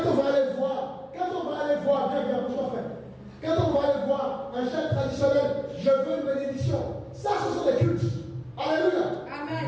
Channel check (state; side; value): identical; both; correlation 1.00